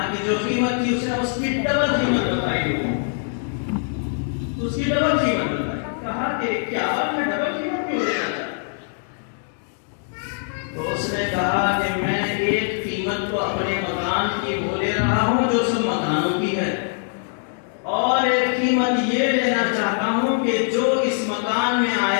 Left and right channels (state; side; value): silent; right; digital silence